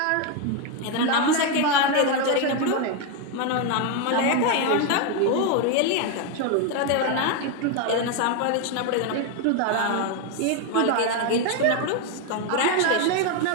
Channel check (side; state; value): both; different; correlation 0.01